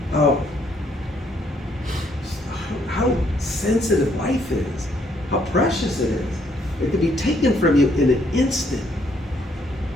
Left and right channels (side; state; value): both; normal; correlation 0.69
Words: eye-opener. How sensitive life is, how precious it is. It could be taken from you in an instant.